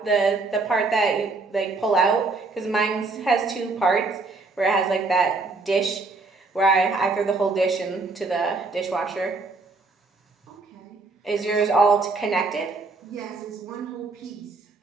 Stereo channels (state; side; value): quieter; left; 3.7 dB